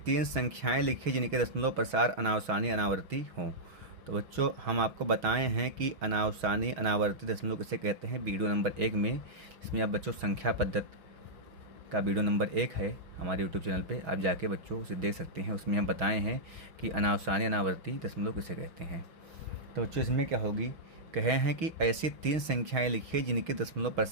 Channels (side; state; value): left; late; 6.3 ms